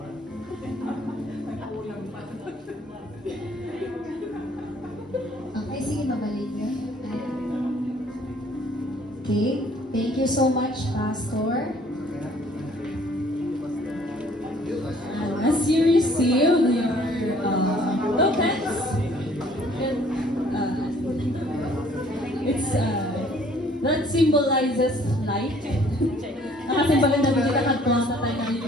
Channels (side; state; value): both; normal; correlation 0.58